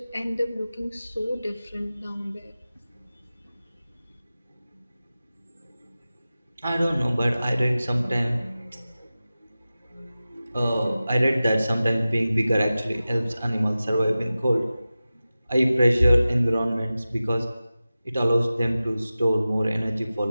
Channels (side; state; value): both; inverted; correlation -0.95